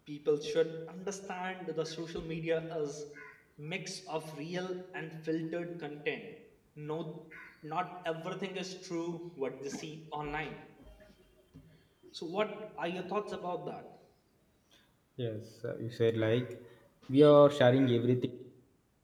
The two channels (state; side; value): identical; both; correlation 1.00